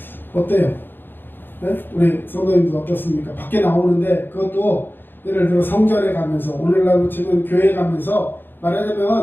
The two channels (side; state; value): right; late; 0.097 ms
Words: 어때요? 네? 우리 성도님들 어떻습니까? 밖에 나오는데 그것도 예를 들어 성전에 가면서 오늘날로 치면 교회에 가면서